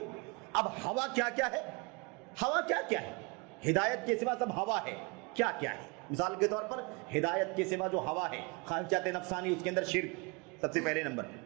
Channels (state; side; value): quieter; left; 29.4 dB